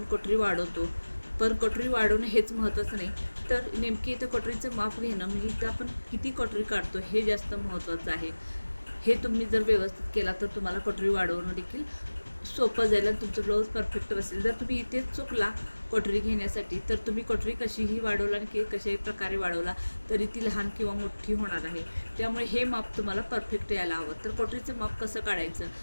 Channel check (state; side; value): inverted; both; correlation -1.00